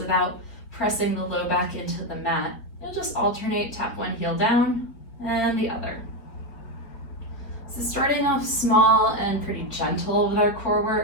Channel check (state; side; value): late; right; 4.4 ms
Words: pressing the low back into the mat, you'll just alternate, tap one heel down and the other. So starting off small and pretty gentle with our core